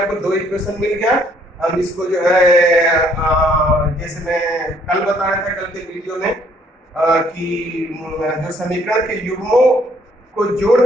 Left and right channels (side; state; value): both; normal; correlation 0.64